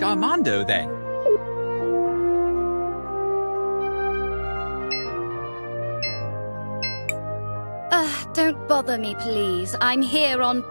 Armando then. Don't bother me, please. I'm here on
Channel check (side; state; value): both; inverted; correlation -1.00